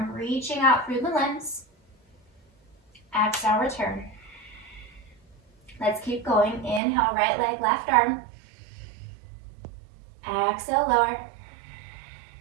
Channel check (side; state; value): left; drops out; at 6.8 s